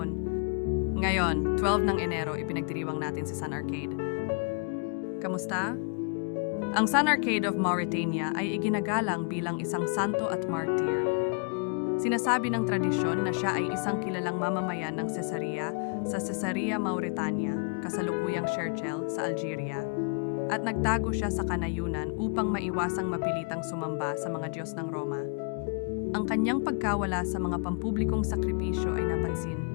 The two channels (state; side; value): quieter; right; 38.8 dB